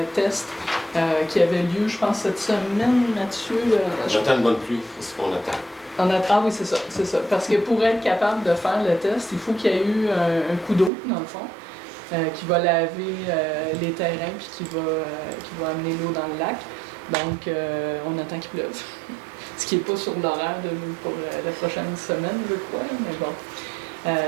test qui avait lieu, je pense, cette semaine, Mathieu. J'attends une bonne pluie, c'est ce qu'on attend. Ah oui, c'est ça. Parce que pour être capable de faire le test, il faut qu'il y ait eu un coup d'eau, dans le fond, qui va laver les terrains puis qui va amener l'eau dans le lac. Donc, on attend qu'il pleuve. Ce qui n'est pas sur l'horaire pour la prochaine semaine, je crois, mais bon.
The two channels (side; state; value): left; drops out; at 10.9 s